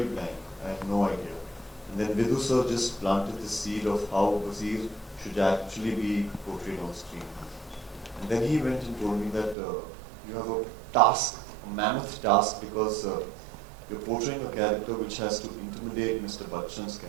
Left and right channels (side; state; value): left; drops out; at 9.6 s